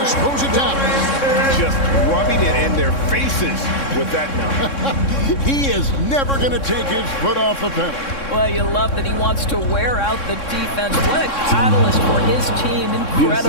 throws it down. Just rubbing it in their faces with that number. He is never going to take his foot off the pedal. Well, you love that he wants to wear out the defense. What a catalyst for his team.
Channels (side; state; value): right; late; 3.6 ms